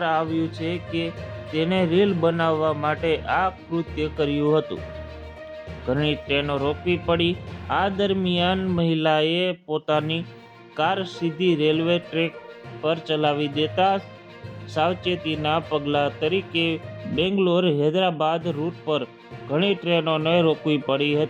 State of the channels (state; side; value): identical; both; correlation 1.00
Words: આવ્યું છે કે તેને રીલ બનાવવા માટે આ કૃત્ય કર્યું હતું. ઘણી ટ્રેનો રોકવી પડી. આ દરમિયાન મહિલાએ પોતાની કાર સીધી રેલવે ટ્રેક પર ચલાવી દેતા સાવચેતીના પગલા તરીકે બેંગ્લોર-હૈદરાબાદ રૂટ પર ઘણી ટ્રેનોને રોકવી પડી